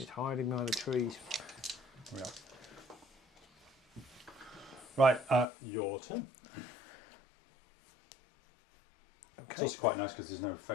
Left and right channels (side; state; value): right; drops out; at 5.5 s